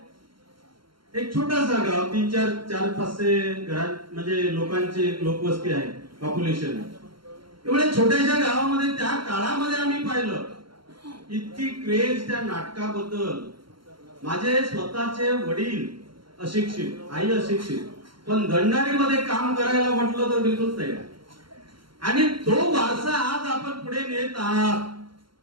एक छोटासा गाव, 3-4-500 घरात म्हणजे लोकांची लोकवस्ती आहे, पॉप्युलेशन आहे. एवढ्या छोट्याशा गावामध्ये त्या काळामध्ये आम्ही पाहिलं इतकी क्रेज त्या नाटकाबद्दल. माझे स्वतःचे वडील अशिक्षित, आई अशिक्षित, पण दंडारीमध्ये काम करायला म्हटलं तर बिलकुल तयार. आणि तो वारसा आज आपण पुढे नेत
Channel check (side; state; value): left; late; 0.73 ms